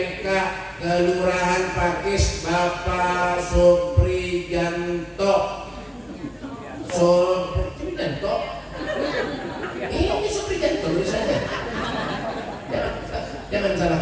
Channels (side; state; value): both; identical; correlation 1.00